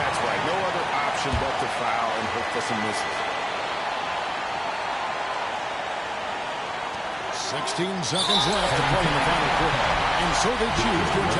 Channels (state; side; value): identical; both; correlation 1.00